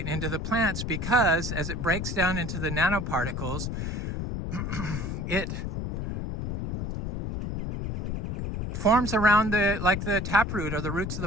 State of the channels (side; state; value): left; noise; rumble, 3 dB below the sound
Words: into the plants because as it breaks down into the nanoparticles, it forms around the taproot or the roots of